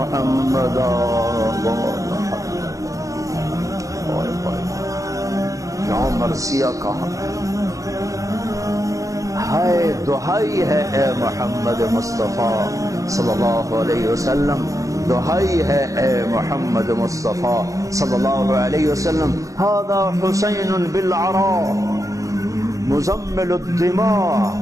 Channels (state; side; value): late; left; 0.16 ms